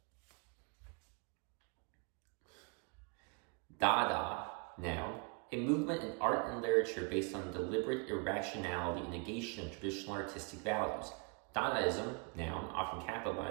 Dada, noun, a movement in art and literature based on deliberate irrationality and negation of traditional artistic values. Dadaism, noun, often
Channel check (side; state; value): left; quieter; 34.2 dB